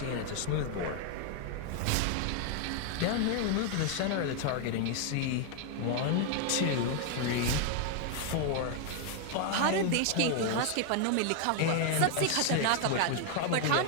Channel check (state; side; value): different; both; correlation 0.00